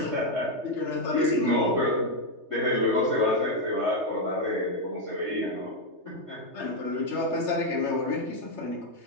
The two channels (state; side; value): late; left; 3.3 ms